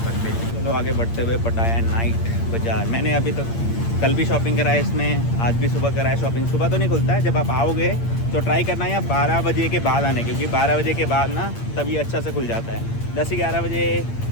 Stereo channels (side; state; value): right; late; 8.7 ms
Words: बेसिक। चलो आगे बढ़ते हुए पटाया नाइट बाज़ार। मैंने अभी तक कल भी शॉपिंग करा है इसमें, आज भी सुबह करा है शॉपिंग। सुबह तो नहीं खुलता है, जब आप आओगे तो ट्राई करना है 12 बजे के बाद आने, क्योंकि 12 बजे के बाद ना तभी अच्छा से खुल जाता है। 10-11 बजे,